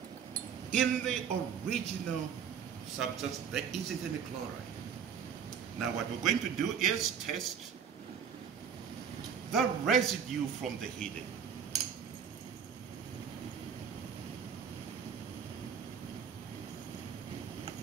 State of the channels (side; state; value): left; quieter; 7.5 dB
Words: in the original substance there isn't any chloride. Now what we're going to do is test the residue from the heating.